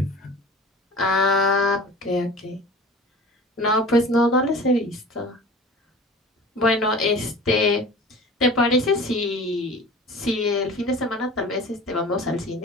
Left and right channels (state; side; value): normal; both; correlation 0.40